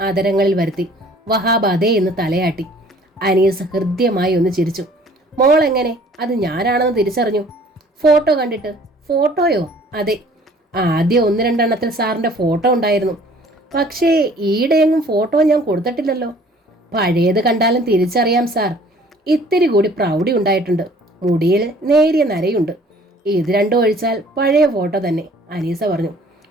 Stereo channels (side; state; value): both; normal; correlation 0.54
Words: ആദരങ്ങളിൽ വരുത്തി വഹാബ് അതേ എന്ന് തലയാട്ടി. അനീസ് ഹൃദ്യമായി ഒന്ന് ചിരിച്ചു. മോൾ എങ്ങനെ അത് ഞാനാണെന്ന് തിരിച്ചറിഞ്ഞു? ഫോട്ടോ കണ്ടിട്ട്. ഫോട്ടോയോ? അതെ, ആദ്യം 1-2 എണ്ണത്തിൽ സാറിൻ്റെ ഫോട്ടോ ഉണ്ടായിരുന്നു. പക്ഷേ ഈയിടെയെങ്ങും ഫോട്ടോ ഞാൻ കൊടുത്തിട്ടില്ലല്ലോ. പഴയത് കണ്ടാലും തിരിച്ചറിയാം സാർ. ഇത്തിരി കൂടി പ്രൗഢി ഉണ്ടായിട്ടുണ്ട്. മുടിയിൽ നേരിയ നരയുണ്ട്. ഇത് രണ്ടും ഒഴിച്ചാൽ പഴയ ഫോട്ടോ തന്നെ, അനീസ പറഞ്ഞു.